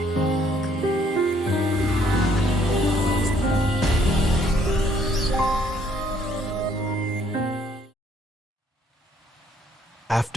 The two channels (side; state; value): both; normal; correlation 0.66